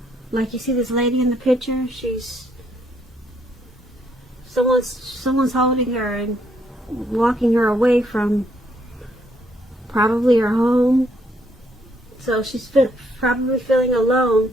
Like you see this lady in the picture, someone's holding her and walking her away from probably her home. So she's probably feeling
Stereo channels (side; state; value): both; normal; correlation 0.71